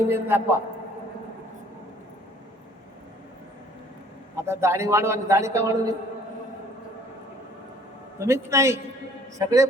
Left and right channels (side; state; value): both; normal; correlation 0.56